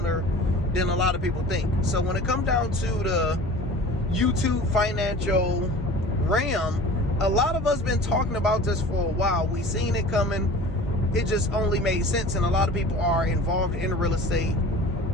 than a lot of people think. So when it comes down to the YouTube financial realm, a lot of us been talking about this for a while. We seen it coming. It just only made sense, and a lot of people are involved in real estate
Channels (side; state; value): both; normal; correlation 0.42